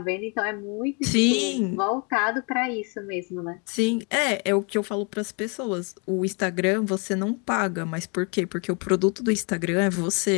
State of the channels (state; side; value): quieter; right; 34.3 dB